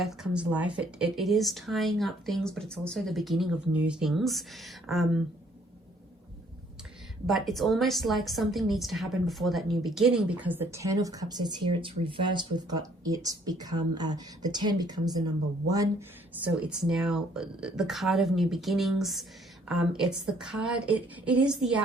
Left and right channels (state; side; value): normal; both; correlation 0.63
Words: comes life. It is tying up things, but it's also the beginning of new things. But it's almost like something needs to happen before that new beginning, because the 10 of Cups is here. It's reversed. We've got it become, the 10 becomes the number 1. So it's now the card of new beginnings. It's the card, it is the